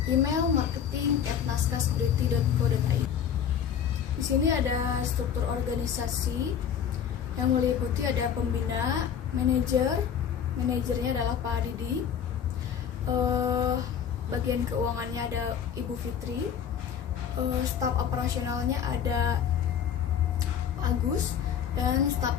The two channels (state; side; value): quieter; right; 8.3 dB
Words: Email marketing@naskasecurity.co.id. Di sini ada struktur organisasi yang meliputi ada pembina, manajernya adalah Pak Didi, bagian keuangannya ada Ibu Fitri, staf operasionalnya ada Pak Agus, dan staf